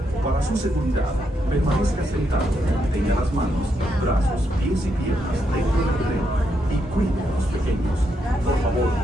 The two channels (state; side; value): normal; both; correlation 0.79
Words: su seguridad, permanezca sentado, tenga las manos, brazos, pies y piernas dentro del tren y cuide a los pequeños. Por favor,